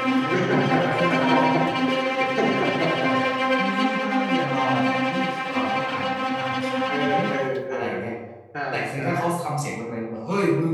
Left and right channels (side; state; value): both; identical; correlation 1.00